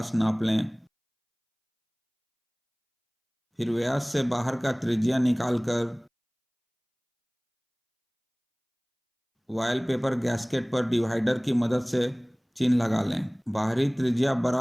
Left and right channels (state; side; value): identical; both; correlation 1.00